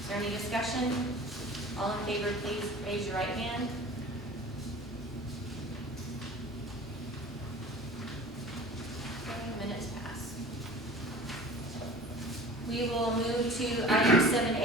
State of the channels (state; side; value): normal; both; correlation 0.42